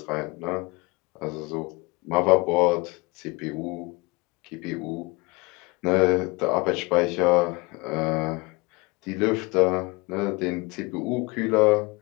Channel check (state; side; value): quieter; right; 25.8 dB